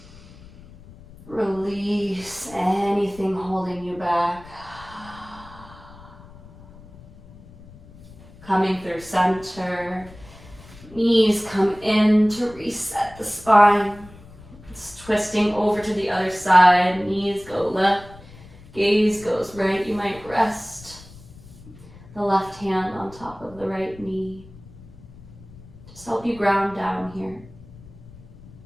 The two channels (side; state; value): left; noise; rumble, 20 dB below the sound